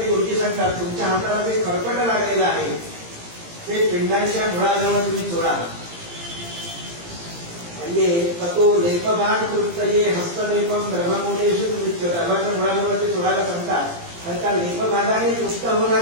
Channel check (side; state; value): left; late; 17 ms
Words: गुरुजी सांगतात तुमच्या हाताला ते खरकट लागलेलं आहे ते पिंडांच्या मुळाजवळ तुम्ही चोळा. म्हणजे तो लेपभाग तृप्तये हस्तलेपम ब्रह्ममूलेषु गर्भाच्या मुळाजवळ ते चोळायला सांगतात आणि त्या लेपभागाने तृप्त